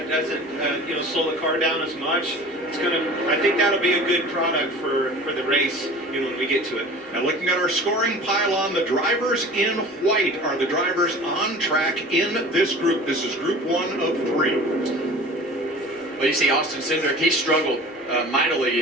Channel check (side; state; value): both; normal; correlation 0.40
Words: doesn't slow the car down as much. I think that'll be a good product for the race, when we get to it. Now looking at our scoring pylon, the drivers in white are the drivers on track in this group. This is group 1 of 3. Well, you see Austin Cindric, he struggled mightily